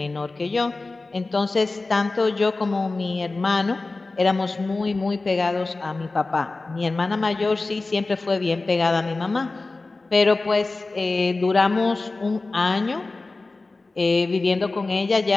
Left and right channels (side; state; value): right; quieter; 3.4 dB